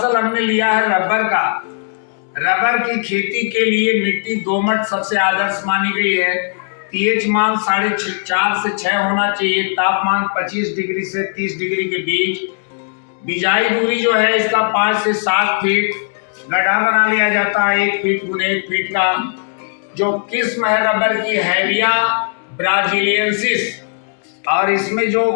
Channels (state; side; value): silent; right; digital silence